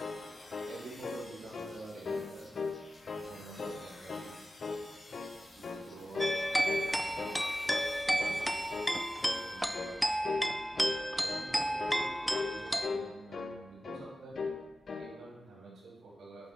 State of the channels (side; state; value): both; normal; correlation 0.95